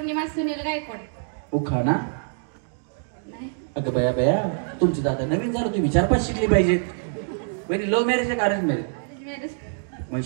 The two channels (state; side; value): silent; left; digital silence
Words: सुनील गायकवाड. उखाणा? अगं बया बया तुमची दादा नवीन झालं, तुम्ही 4-5 शिकली पाहिजेत. वहिनी लव्ह मॅरेज आहे का अरेंज मॅरेज? मग